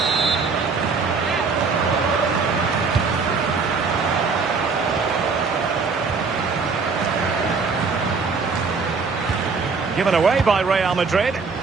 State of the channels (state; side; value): quieter; left; 4.8 dB